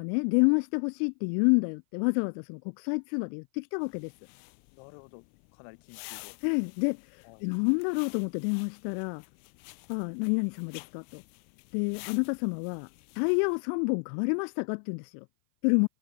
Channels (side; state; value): right; silent; 56 dB below the other